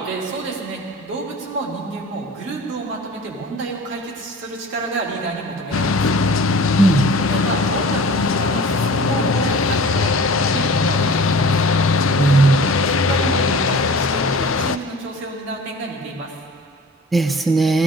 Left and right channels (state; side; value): normal; both; correlation 0.42